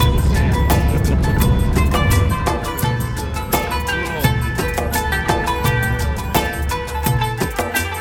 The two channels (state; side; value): identical; both; correlation 1.00